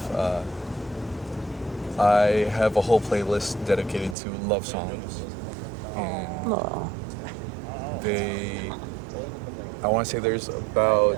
I have a whole playlist dedicated to love songs, and No. I want to say there's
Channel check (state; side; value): drops out; left; at 4.2 s